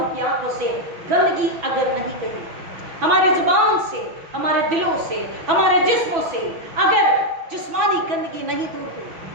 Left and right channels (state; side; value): late; left; 6.1 ms